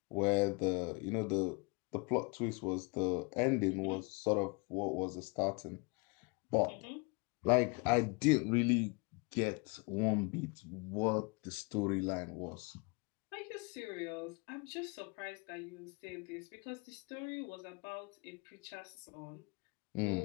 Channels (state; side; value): quieter; right; 30.4 dB